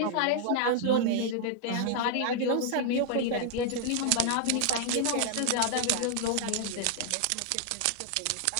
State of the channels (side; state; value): both; different; correlation 0.00